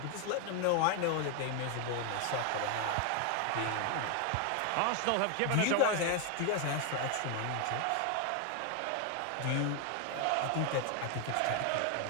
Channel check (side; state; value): both; different; correlation 0.01